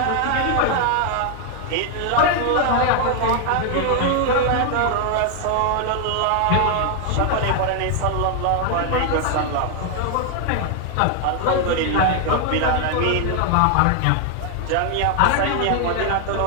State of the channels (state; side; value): different; both; correlation 0.00